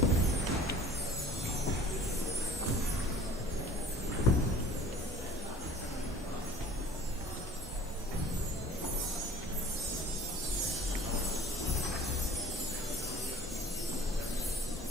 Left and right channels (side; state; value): both; normal; correlation 0.46